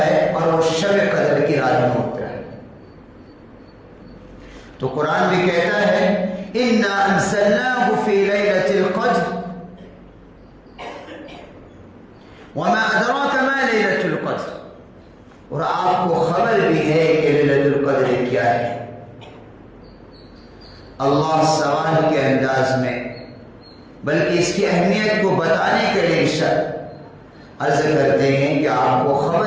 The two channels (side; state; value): both; identical; correlation 1.00